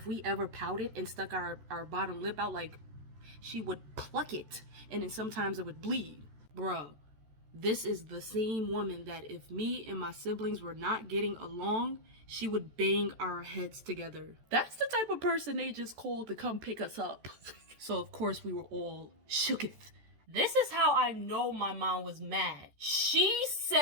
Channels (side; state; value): left; late; 14 ms